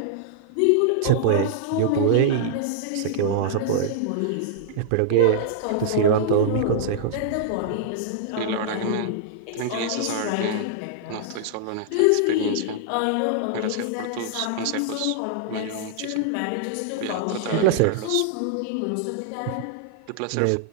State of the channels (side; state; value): both; different; correlation -0.01